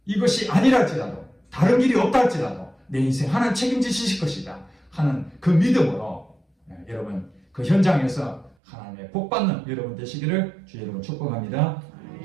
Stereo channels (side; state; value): left; drops out; at 8.6 s